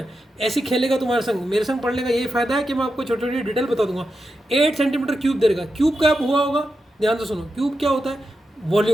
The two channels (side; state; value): both; normal; correlation 0.88